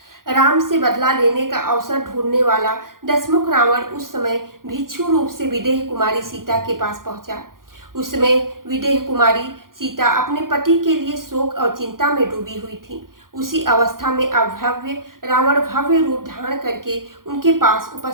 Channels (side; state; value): left; late; 0.91 ms